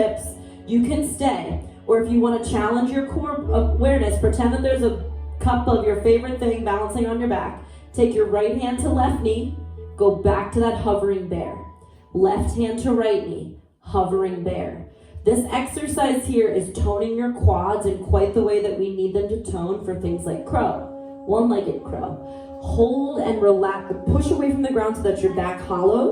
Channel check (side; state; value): both; identical; correlation 1.00